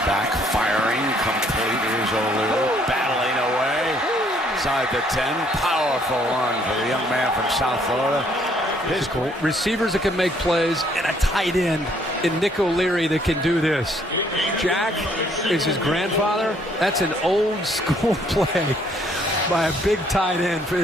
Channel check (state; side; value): normal; both; correlation 0.65